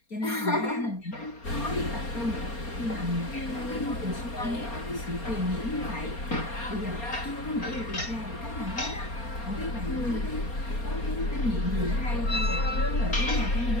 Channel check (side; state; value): right; late; 4.3 ms